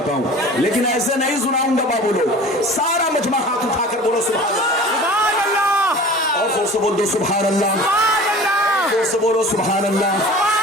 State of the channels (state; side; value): normal; both; correlation 0.41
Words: हूं, लेकिन ऐसे नहीं सुनाऊंगा बाबू लोग। सारा मजमा हाथ उठाकर बोलो सुभान अल्लाह, और जोर से बोल दो सुभान अल्लाह, जोर से बोलो सुभान अल्लाह।